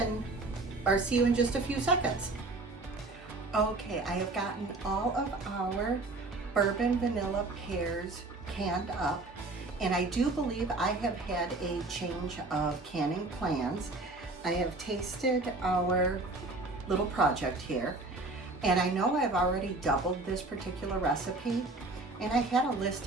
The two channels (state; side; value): quieter; left; 3.2 dB